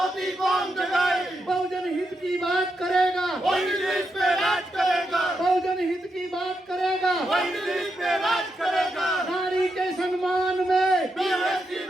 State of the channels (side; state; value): both; normal; correlation 0.84